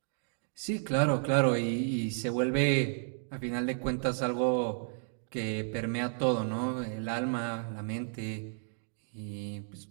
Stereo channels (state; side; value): silent; left; digital silence